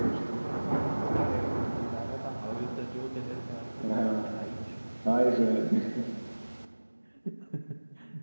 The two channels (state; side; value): inverted; both; correlation -1.00